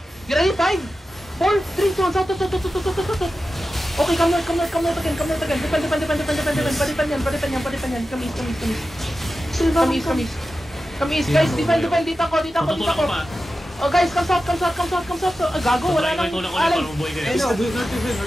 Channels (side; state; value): both; normal; correlation 0.93